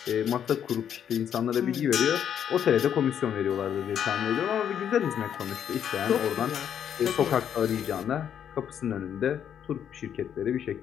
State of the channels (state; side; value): quieter; right; 9.0 dB